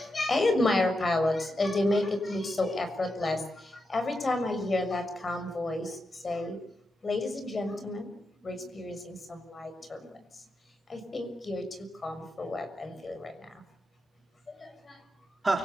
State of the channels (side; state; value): both; normal; correlation 0.87